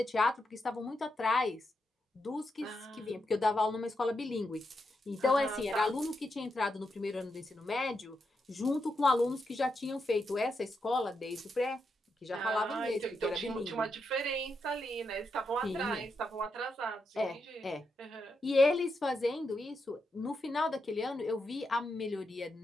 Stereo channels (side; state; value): both; normal; correlation 0.84